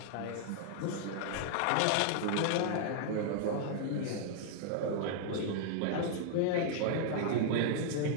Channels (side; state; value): both; different; correlation -0.01